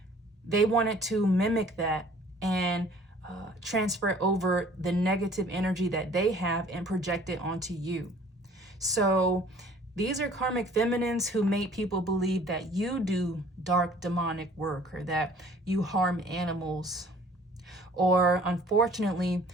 They wanted to mimic that and transfer over the negative energy that they have and project it onto you. So these are karmic feminines who made people believe that you do dark demonic work or that you harm animals. Or unfortunately,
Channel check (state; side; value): normal; both; correlation 0.53